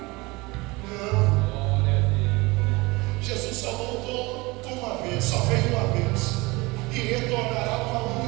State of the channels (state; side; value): quieter; left; 23.7 dB